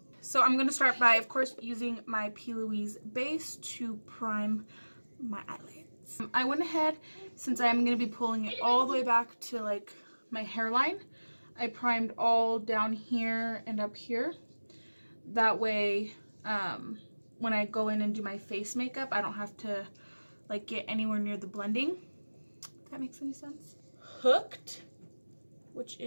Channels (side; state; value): both; inverted; correlation -1.00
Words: So I'm going to start by, of course, using my P.Louise base to prime my eyelids. I went ahead, since I'm going to be pulling it all the way back to like my hairline, I primed all down here and up here. That way, when I go in and do my face makeup, I don't have to like get anywhere near the blending. If that makes any sense. Hooked, which